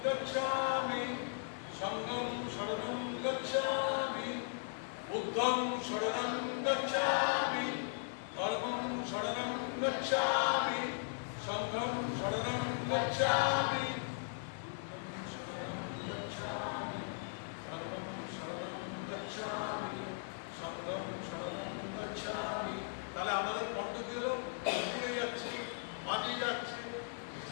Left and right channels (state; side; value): silent; right; digital silence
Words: গচ্ছামি সঙ্গং শরণং গচ্ছামি বুদ্ধং শরণং গচ্ছামি কর্মং শরণং গচ্ছামি সঙ্গং শরণং গচ্ছামি তাহলে আমাদের কণ্ঠ কি হলো ঘুরে যাচ্ছে বাজিয়ে যাচ্ছে